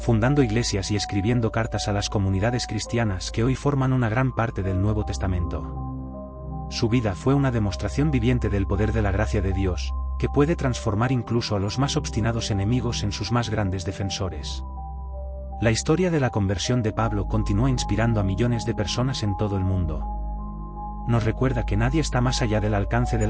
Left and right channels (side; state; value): both; identical; correlation 1.00